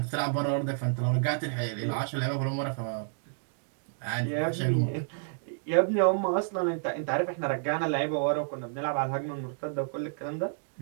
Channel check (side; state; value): left; silent; digital silence